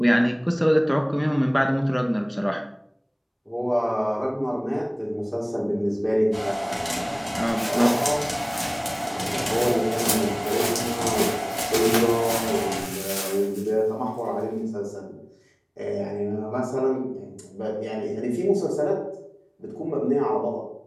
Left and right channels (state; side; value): identical; both; correlation 1.00